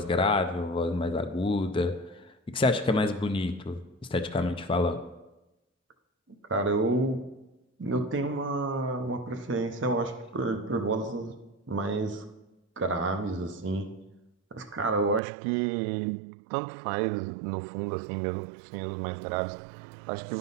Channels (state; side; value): drops out; left; at 15.2 s